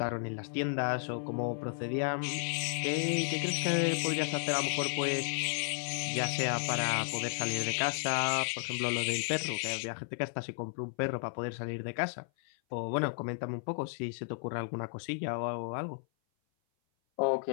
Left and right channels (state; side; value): silent; right; 56 dB below the other